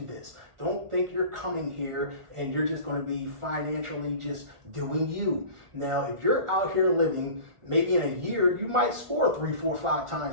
Don't think you're coming here and you're just going to be financially just doing you. Now, if you're out here living, maybe in a year, you might score 3, 4, 5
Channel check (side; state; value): left; late; 1.5 ms